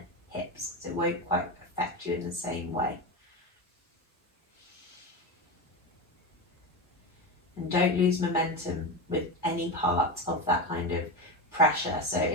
hips, because it won't quite affect you in the same way. And don't lose momentum with any part of that kind of pressure. So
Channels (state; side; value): normal; both; correlation 0.18